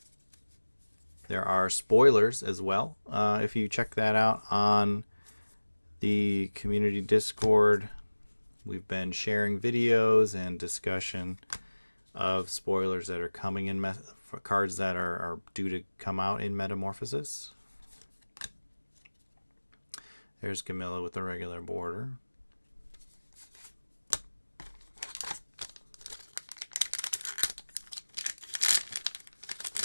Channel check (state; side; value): inverted; both; correlation -1.00